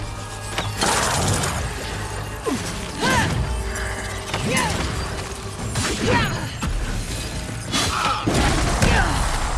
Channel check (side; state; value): both; identical; correlation 1.00